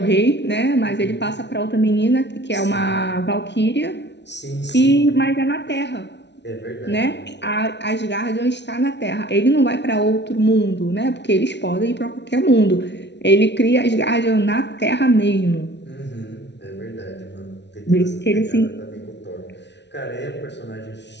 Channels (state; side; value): late; right; 0.50 ms